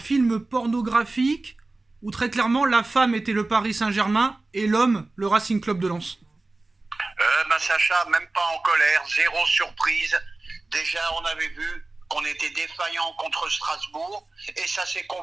pornographique où très clairement la femme était le Paris Saint-Germain et l'homme le Racing Club de Lens? Sacha, même pas en colère, zéro surprise. Déjà, on avait vu qu'on était défaillant contre Strasbourg et ça s'est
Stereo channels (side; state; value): left; quieter; 3.2 dB